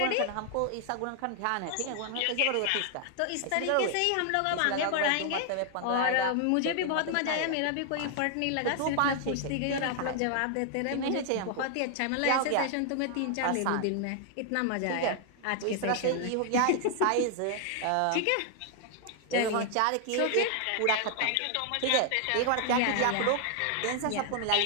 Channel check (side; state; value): both; different; correlation 0.00